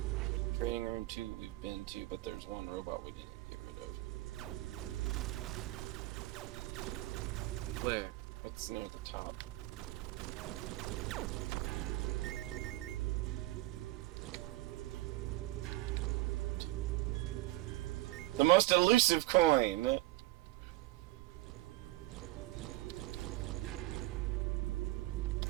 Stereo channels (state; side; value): quieter; left; 18.5 dB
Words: Training room 2 we've been to, but there's one robot we didn't get rid of. Where? It's near the top. The most elusive coin!